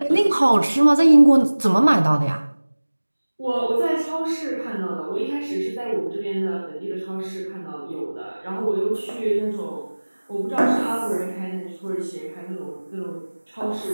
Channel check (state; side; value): inverted; both; correlation -1.00